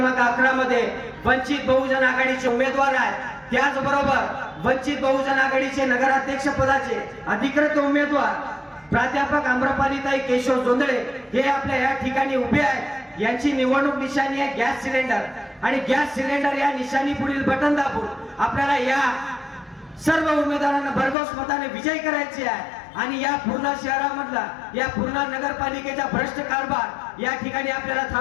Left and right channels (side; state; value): right; drops out; at 21.2 s